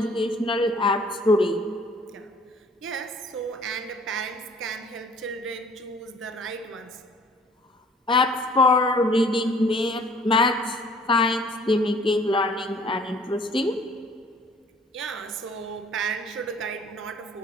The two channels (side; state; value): both; normal; correlation 0.55